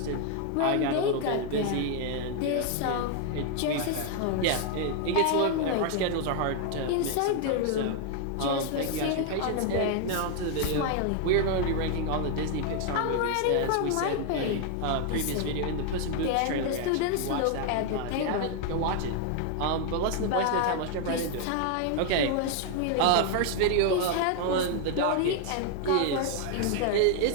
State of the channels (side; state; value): both; different; correlation 0.00